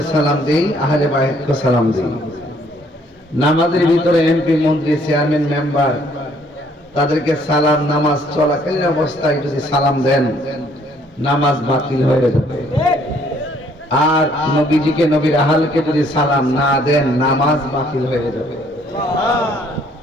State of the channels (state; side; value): normal; both; correlation 0.63